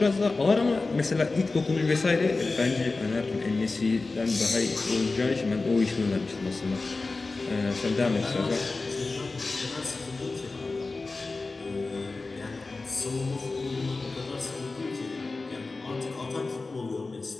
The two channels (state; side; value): quieter; right; 3.6 dB